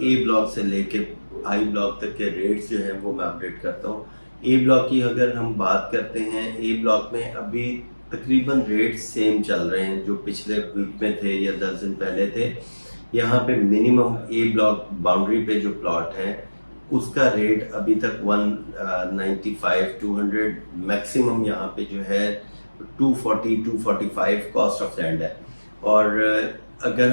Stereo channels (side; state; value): both; inverted; correlation -1.00